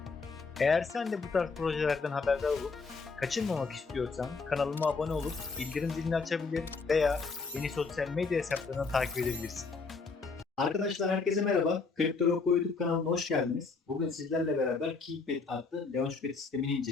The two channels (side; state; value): right; quieter; 4.4 dB